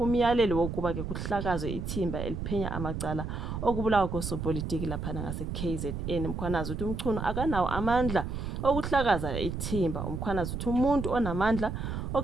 umyalelo wokuba ke kuhlakazwe ithimba eliphenya amacala okubulawa kosopolitiki laphana ngase-KZN. Mkhwanazi uthi uMchunu akanawo amandla okuhlakaza ithimba. Umkhwanazi uthi umuntu onamandla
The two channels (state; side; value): noise; right; rumble, 4 dB below the sound